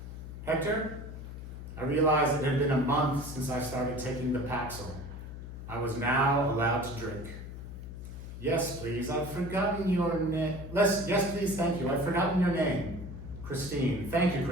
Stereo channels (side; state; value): left; noise; hum, 10 dB below the sound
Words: Hector? I realized it had been a month since I started taking the Paxil. I was now allowed to drink. Yes, please, I've forgotten your name. Yes, please, thank you. I've forgotten your name. Christine. Thank you,